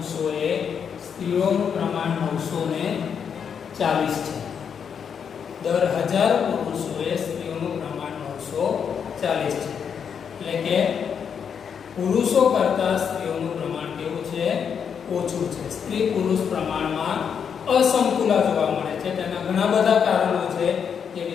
સ્ત્રીઓનું પ્રમાણ 940 છે. દર 1000 પુરુષોએ સ્ત્રીઓનું પ્રમાણ 940 છે. એટલે કે પુરુષો કરતા સ્ત્રીઓનું પ્રમાણ કેવું છે, ઓછું છે. સ્ત્રી પુરુષ પ્રમાણમાં અસમતુલા જોવા મળે છે. તેના ઘણા બધા કારણો છે, જે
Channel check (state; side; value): quieter; right; 7.2 dB